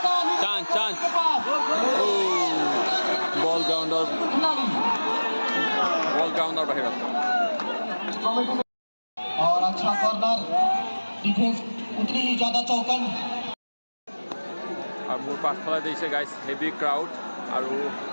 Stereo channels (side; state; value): both; inverted; correlation -1.00